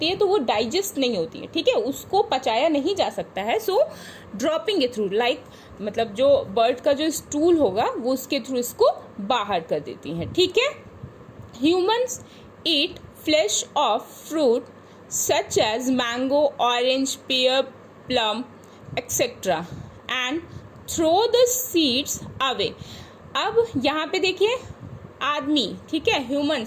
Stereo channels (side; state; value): both; identical; correlation 1.00